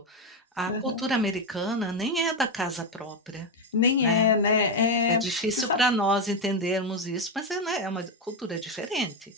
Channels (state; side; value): normal; both; correlation 0.08